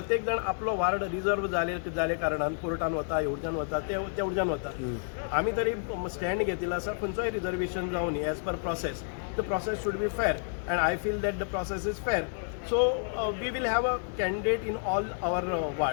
जण आपलो वार्ड रिजर्व जाले कारणान कोर्टान वता, हेवटच्यान वता, ते वटच्यान वता. आमी तरी स्टँड घेतिल्लो आसा खंयचोय रिजर्वेशन जावन as per process. The process should be fair and I feel that the process is fair. So we will have a candidate in all our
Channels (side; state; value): right; silent; digital silence